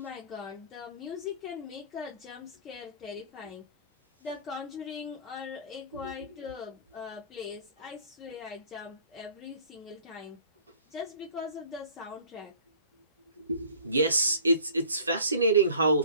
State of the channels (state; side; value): inverted; both; correlation -0.50